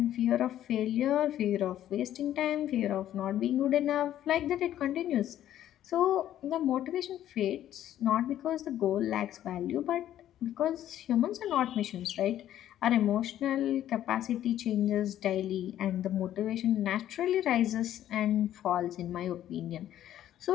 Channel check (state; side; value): quieter; right; 11.9 dB